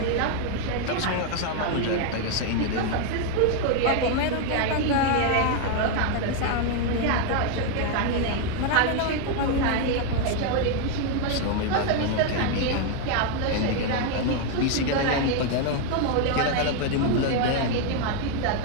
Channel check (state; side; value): different; both; correlation 0.00